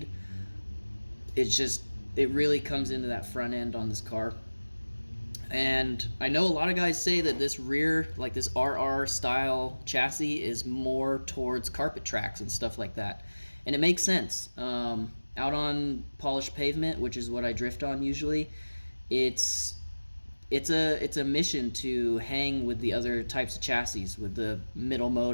It really comes into that front end on this car. And I know a lot of guys say that this rear, like this RR style chassis, is more towards carpet tracks and stuff like that. And it makes sense. Out on polished pavement, which is what I drift on usually, it's a mission to hang with the other types of chassis, with the middle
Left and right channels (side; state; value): both; inverted; correlation -1.00